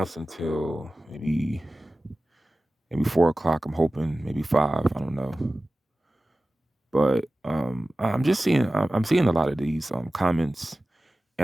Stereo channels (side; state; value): both; normal; correlation 0.96